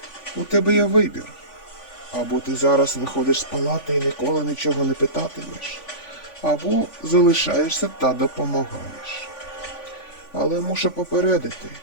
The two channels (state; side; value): late; right; 3.5 ms